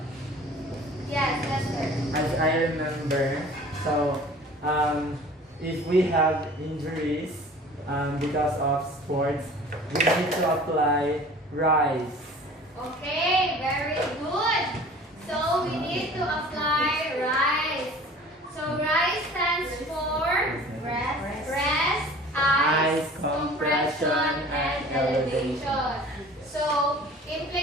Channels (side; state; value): both; normal; correlation 0.45